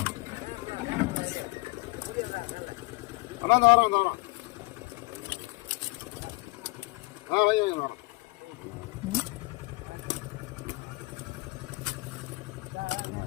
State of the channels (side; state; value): right; quieter; 25.1 dB